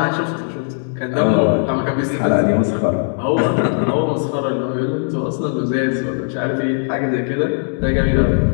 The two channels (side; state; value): right; silent; digital silence